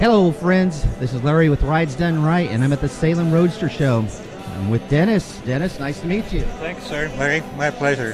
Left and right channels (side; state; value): both; identical; correlation 1.00